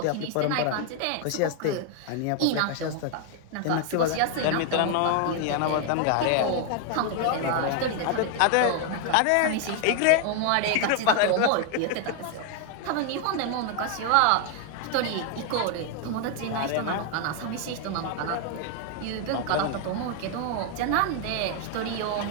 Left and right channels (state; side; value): different; both; correlation 0.00